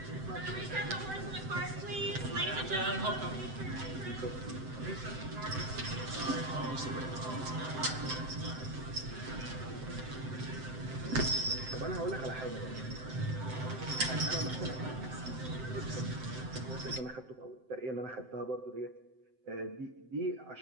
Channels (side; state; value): left; late; 7.8 ms